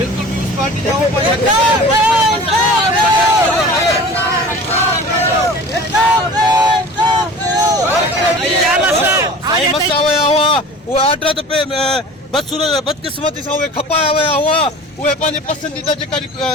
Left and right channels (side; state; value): both; normal; correlation 0.40